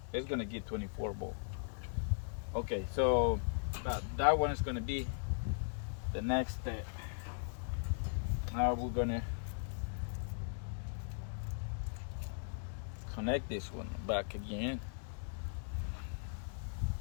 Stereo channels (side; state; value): right; silent; digital silence